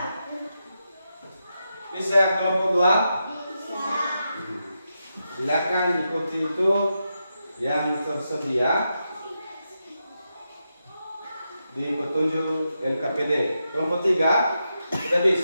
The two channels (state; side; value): inverted; both; correlation -0.86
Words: Bisa kelompok 2? Bisa. Silakan ikuti itu yang tersedia di petunjuk LKPD. Kelompok 3 sudah